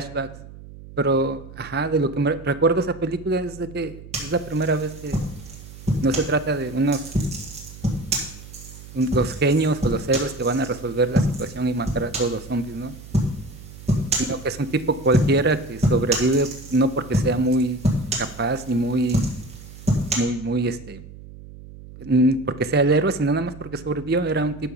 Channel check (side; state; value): right; noise; hum, 16 dB below the sound